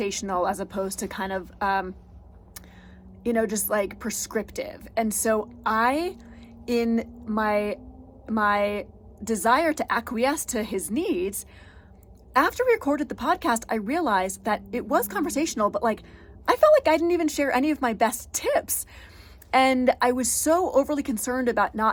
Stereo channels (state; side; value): identical; both; correlation 1.00